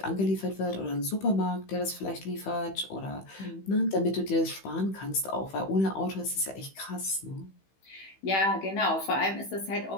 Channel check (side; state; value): right; late; 15 ms